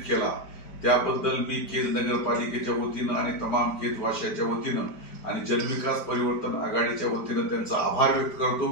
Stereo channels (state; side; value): late; right; 4.8 ms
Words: केला त्याबद्दल मी केज नगरपालिकेच्या वतीनं आणि तमाम केजवासियांच्या वतीनं आणि जनविकास परिवर्तन आघाडीच्या वतीनं त्यांचा आभार व्यक्त करतो।